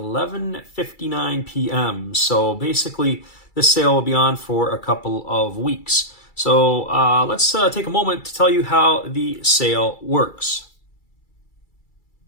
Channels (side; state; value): right; late; 2.3 ms